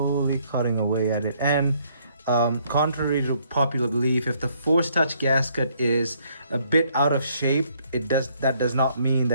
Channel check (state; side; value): inverted; both; correlation -0.67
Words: cutting away at it. And contrary to popular belief, if the Force Touch gasket is a bit out of shape, that does not mean